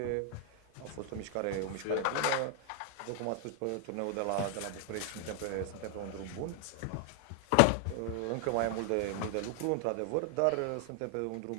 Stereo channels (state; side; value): different; both; correlation 0.00